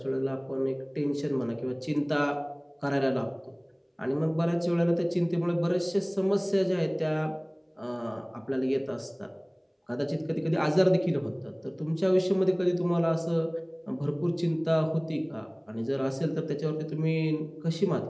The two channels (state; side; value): identical; both; correlation 1.00